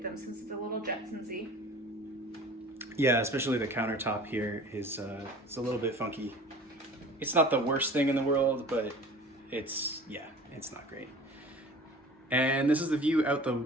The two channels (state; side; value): normal; both; correlation 0.43